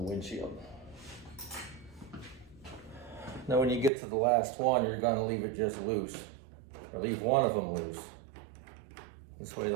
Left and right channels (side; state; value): left; drops out; at 3.9 s